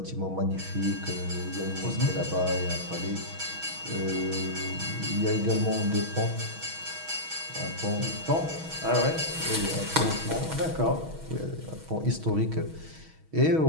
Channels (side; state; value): left; late; 6.3 ms